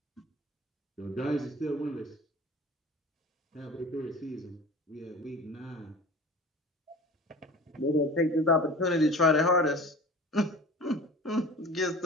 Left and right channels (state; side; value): normal; both; correlation 0.39